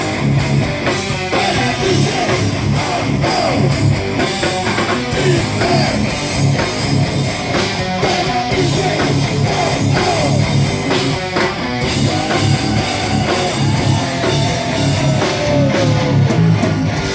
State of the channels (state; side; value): identical; both; correlation 1.00